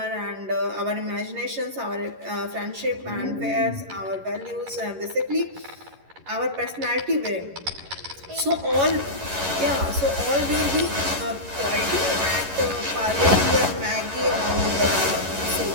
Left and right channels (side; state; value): left; late; 11 ms